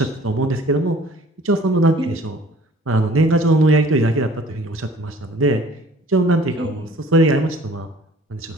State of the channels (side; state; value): both; normal; correlation 0.52